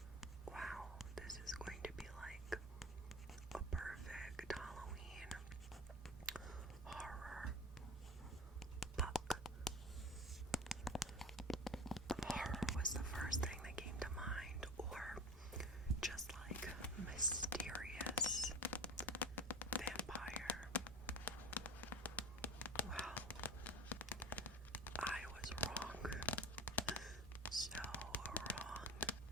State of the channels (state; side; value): normal; both; correlation 0.30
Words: wow, this is going to be like a perfect Halloween horror book. Horror was the first thing that came to mind, or just like mysterious vampire. Well, I was wrong. So wrong.